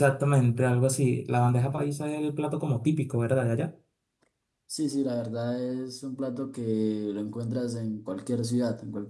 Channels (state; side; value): identical; both; correlation 1.00